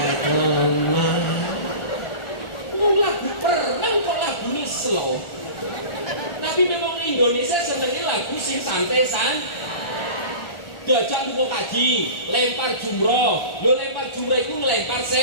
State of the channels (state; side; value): late; right; 1.4 ms